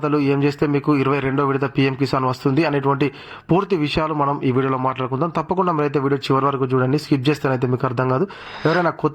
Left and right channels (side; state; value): both; identical; correlation 1.00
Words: ఏం చేస్తే మీకు 22వ విడత పీఎం కిసాన్ వస్తుంది అనేటువంటి పూర్తి విషయాలు మనం ఈ వీడియోలో మాట్లాడుకుందాం. తప్పకుండా మీరైతే వీడియో చివరి వరకు చూడండి. స్కిప్ చేస్తేనైతే మీకు అర్థం కాదు. ఎవరైనా